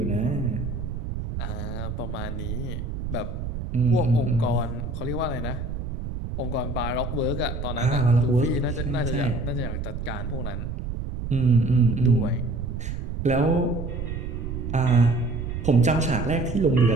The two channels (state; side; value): noise; right; rumble, 5 dB below the sound